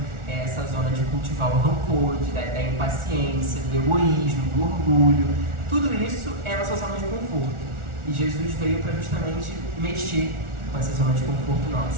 essa zona de cultivar o rancor, da impaciência, do egoísmo, do orgulho. Tudo isso é a nossa zona de conforto. E Jesus veio para justamente mexer com essa zona de conforto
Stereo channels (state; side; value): late; left; 1.4 ms